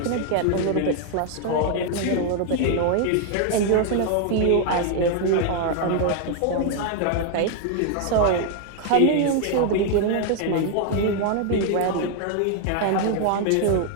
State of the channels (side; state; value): both; different; correlation 0.00